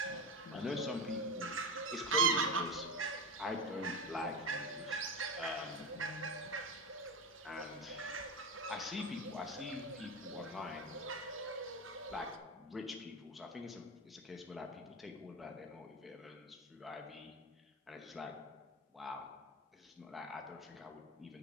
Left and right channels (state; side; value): normal; both; correlation 0.20